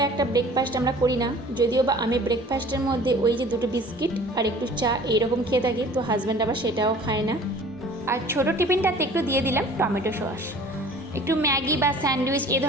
একটা ব্রেকফাস্ট আমরা করি না, যদিও বা আমি ব্রেকফাস্টের মধ্যে ওই যে দুটো বিস্কিট আর একটু চা এইরকম খেয়ে থাকি, তো হাজব্যান্ড আবার সেটাও খায় না। আর ছোটো টিফিনটাতে একটু দিয়ে দিলাম টমেটো সস। একটু ম্যাগি বা স্যান্ডউইচ এ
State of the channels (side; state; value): both; normal; correlation 0.47